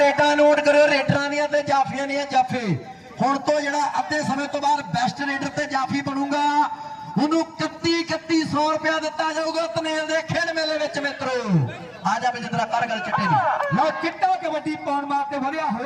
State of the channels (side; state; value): both; identical; correlation 1.00